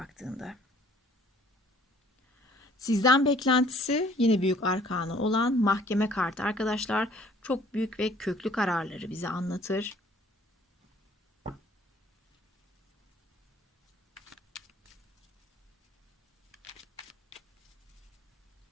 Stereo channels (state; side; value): normal; both; correlation 0.57